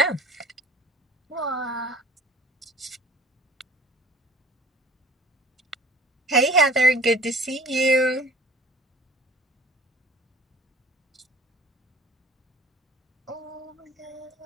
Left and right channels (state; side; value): normal; both; correlation 0.47